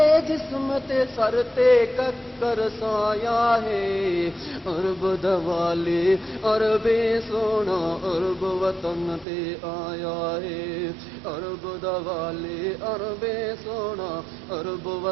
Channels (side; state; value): left; drops out; at 9.2 s